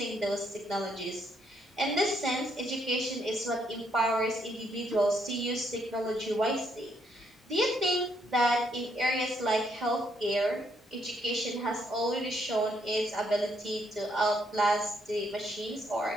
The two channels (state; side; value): normal; both; correlation 0.73